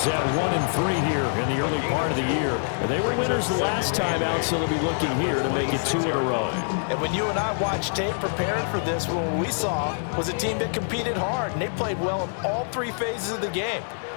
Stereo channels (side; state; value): right; silent; digital silence